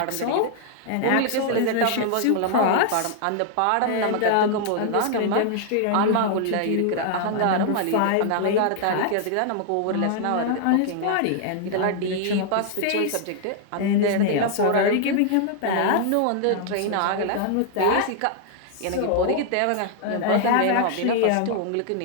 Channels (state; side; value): different; both; correlation -0.01